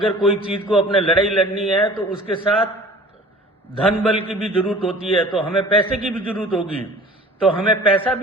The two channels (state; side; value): normal; both; correlation 0.46